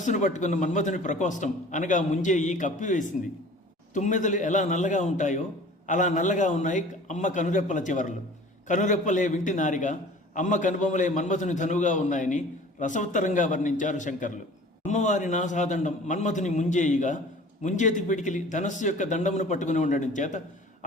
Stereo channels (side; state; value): both; normal; correlation 0.45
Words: పట్టుకున్న మన్మథుని ప్రకోష్టం అనగా ముంజేయి కప్పివేసింది. తుమ్మెదలు ఎలా నల్లగా ఉంటాయో అలా నల్లగా ఉన్నాయి అమ్మ కనురెప్పల చివరలు. కనురెప్పలే వింటి నారిగా, అమ్మ కనుబొమ్మలే మన్మథుని ధనువుగా ఉన్నాయని రసవత్తరంగా వర్ణించారు శంకర్లు. అమ్మవారి నాసాదండం మన్మథుని ముంజేయిగా, ముంజేతి పిడికిలి ధనస్సు యొక్క దండమును పట్టుకుని ఉండడం చేత